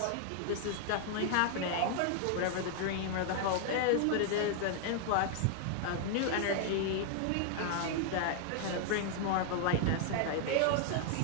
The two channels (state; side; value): different; both; correlation 0.00